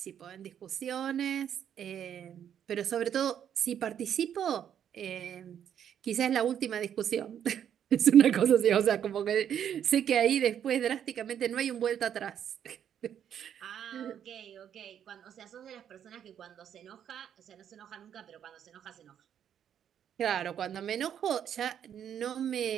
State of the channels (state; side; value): quieter; left; 9.2 dB